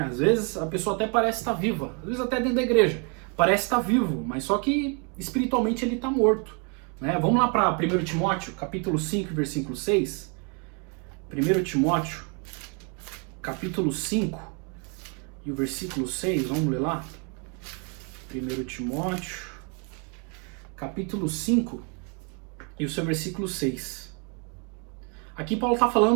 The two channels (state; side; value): quieter; left; 35.6 dB